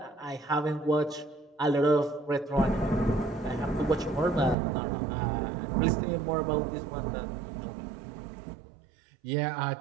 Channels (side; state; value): left; drops out; at 4.5 s